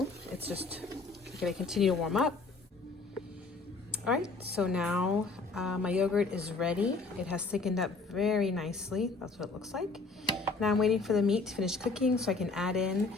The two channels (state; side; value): quieter; right; 3.9 dB